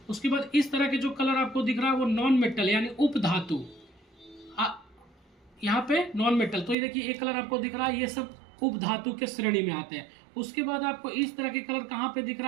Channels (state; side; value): drops out; left; at 6.8 s